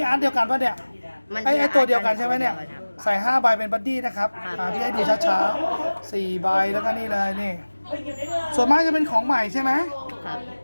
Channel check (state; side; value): inverted; both; correlation -1.00